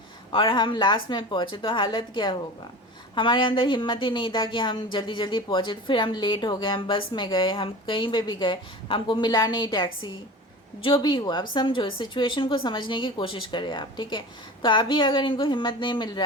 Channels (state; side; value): normal; both; correlation 0.34